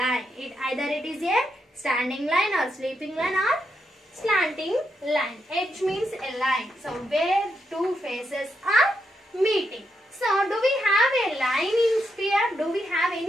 Either it is a standing line or sleeping line or slanting line. Edge means a line. So where two faces are meeting. So do we have a line in sphere? Do we have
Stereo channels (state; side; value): normal; both; correlation 0.82